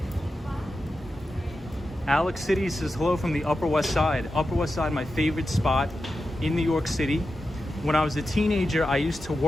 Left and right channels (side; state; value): both; normal; correlation 0.90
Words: Alex City says, hello from the Upper West Side. Upper West Side, my favorite spot in New York City. When I was a teenager, I used to